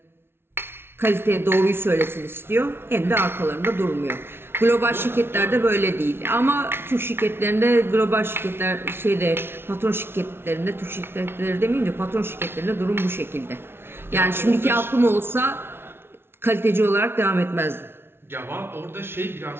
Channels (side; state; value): left; late; 0.12 ms